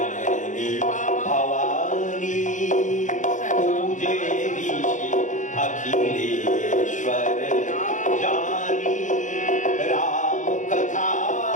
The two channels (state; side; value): late; right; 0.36 ms